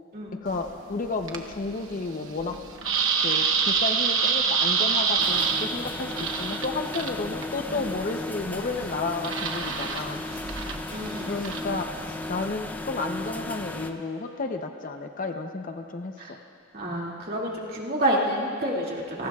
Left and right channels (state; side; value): normal; both; correlation 0.11